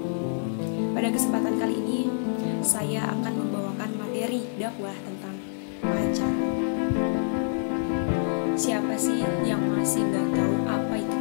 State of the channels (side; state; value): right; silent; digital silence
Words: Pada kesempatan kali ini saya akan membawakan materi dakwah tentang pacaran. Siapa sih yang masih nggak tahu apa itu